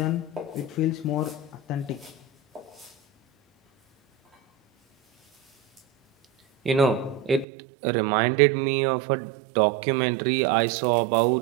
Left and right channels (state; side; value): drops out; left; at 7.5 s